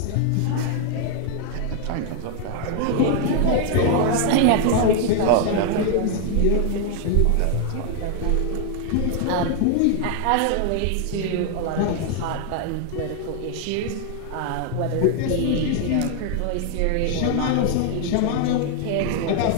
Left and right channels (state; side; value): different; both; correlation 0.00